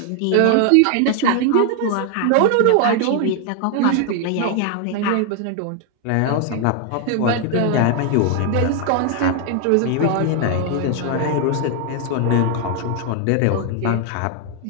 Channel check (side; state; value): both; different; correlation 0.00